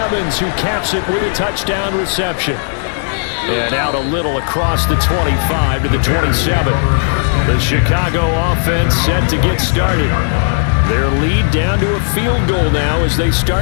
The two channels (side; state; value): right; silent; 70 dB below the other